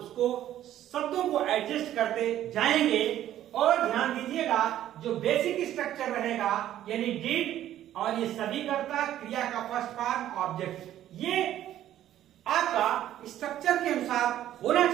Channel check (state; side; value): quieter; left; 12.2 dB